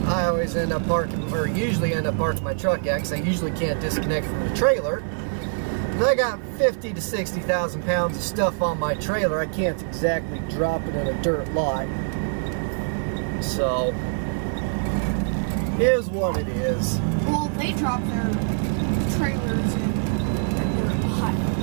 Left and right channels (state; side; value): silent; left; digital silence